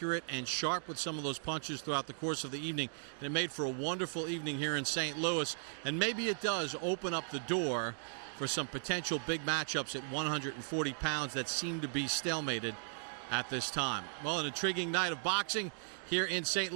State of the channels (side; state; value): left; silent; digital silence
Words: and sharp with some of those punches throughout the course of the evening. And it made for a wonderful evening here in St. Louis. And maybe it does open up the door for some potential big matchups at 140 pounds that seem to be stalemated at this time. Well, an intriguing night of boxing here in St.